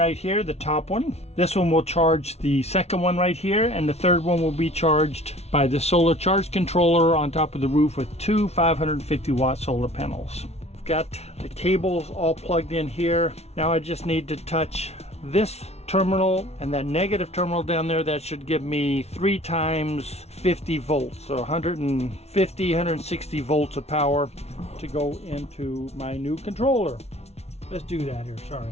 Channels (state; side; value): late; right; 0.31 ms